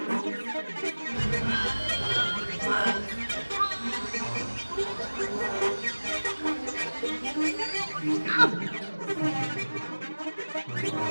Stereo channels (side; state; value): both; inverted; correlation -1.00